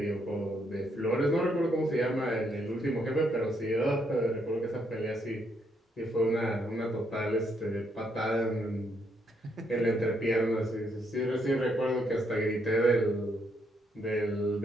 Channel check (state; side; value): normal; both; correlation 0.75